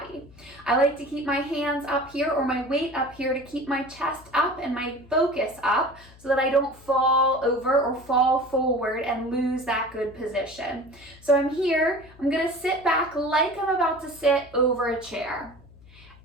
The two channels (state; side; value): noise; left; hum, 23 dB below the sound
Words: I like to keep my hands up here or my weight up here to keep my chest up and my focus up so that I don't fall over or fall forward and lose that good position. So I'm here. I'm going to sit back like I'm about to sit over a chair